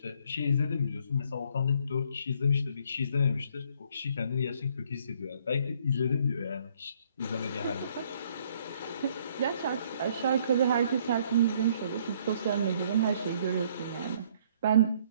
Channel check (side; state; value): both; inverted; correlation -0.63